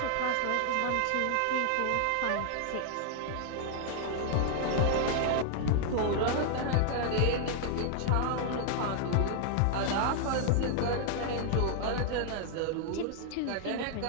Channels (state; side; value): different; both; correlation 0.00